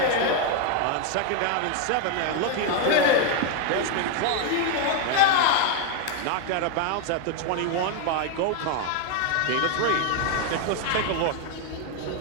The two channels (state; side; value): different; both; correlation 0.01